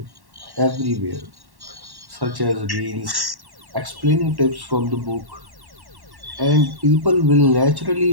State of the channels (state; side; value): late; left; 1.1 ms